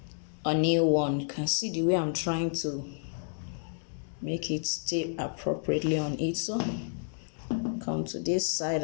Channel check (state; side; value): silent; right; digital silence